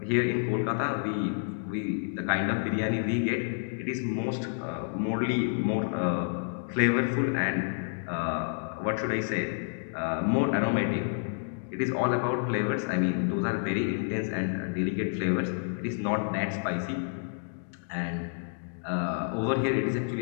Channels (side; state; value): right; silent; digital silence